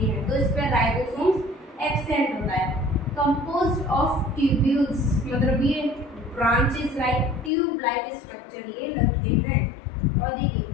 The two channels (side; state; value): right; drops out; at 7.5 s